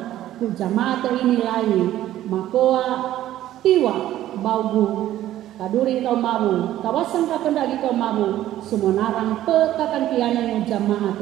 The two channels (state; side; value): quieter; left; 13.3 dB